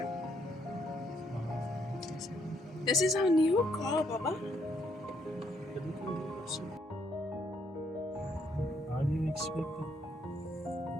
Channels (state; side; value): normal; both; correlation 0.72